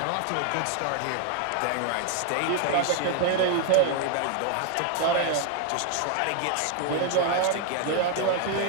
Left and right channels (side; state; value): both; different; correlation 0.00